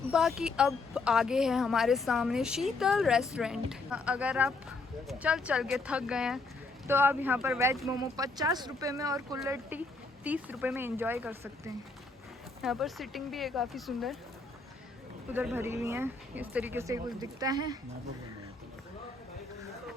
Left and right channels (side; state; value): right; quieter; 3.6 dB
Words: बाकी अब आगे है हमारे सामने शीतल रेस्टोरेंट। अगर आप चल के थक गए हैं तो आप यहाँ पर वेज मोमो 50 रुपये में और कुल्हड़ टी 30 रुपये में एंजॉय कर सकते हैं। यहाँ पर सिटिंग भी है काफ़ी सुंदर, उधर भरी हुई है। इस तरीके से कुछ दिखता है।